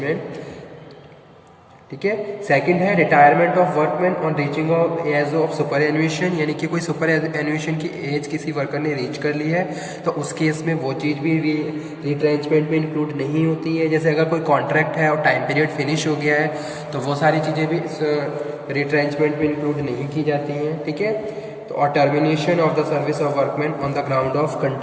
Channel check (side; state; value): both; identical; correlation 1.00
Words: ठीक है, सेकंड है retirement of workman on reaching of age of superannuation, यानी कि कोई सुपर एन्यूएशन की एज किसी वर्कर ने रीच कर ली है तो उस केस में वो चीज़ भी रिट्रेंचमेंट में इंक्लूड नहीं होती है। जैसे अगर कोई कॉन्ट्रैक्ट है और टाइम पीरियड फिनिश हो गया है तो वो सारी चीज़ें भी रिट्रेंचमेंट में इंक्लूड नहीं की जाती हैं। ठीक है, तो और termination of the service of workman on the ground of